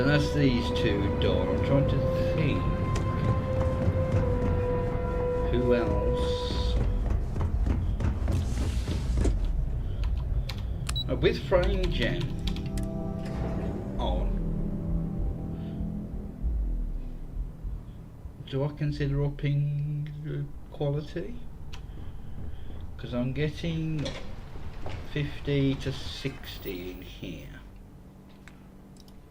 that's these two done. I'm trying to think. Who else? With Frame Gem on, do I consider upping the quality? Because I'm getting 50 to 60 in here.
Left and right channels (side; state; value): both; identical; correlation 1.00